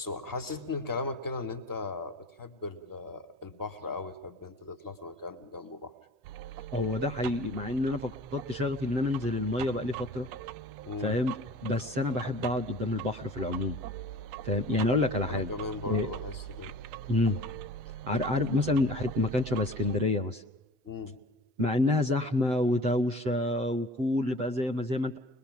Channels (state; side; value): late; left; 7.9 ms